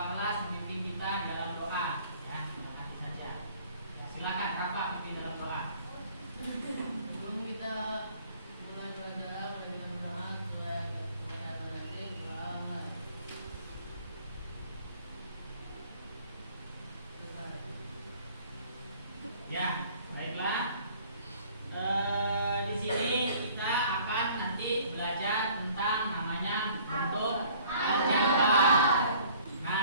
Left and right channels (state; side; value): inverted; both; correlation -0.54